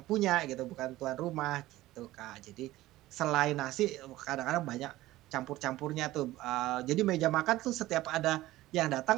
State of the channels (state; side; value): quieter; left; 16.7 dB